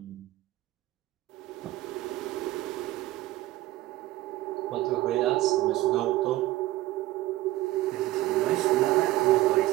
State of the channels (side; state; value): left; quieter; 16.8 dB